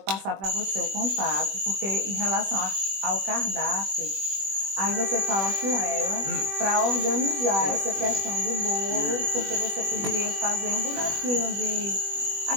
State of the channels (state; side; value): late; left; 21 ms